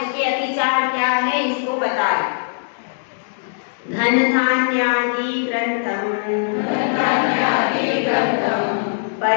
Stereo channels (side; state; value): right; silent; digital silence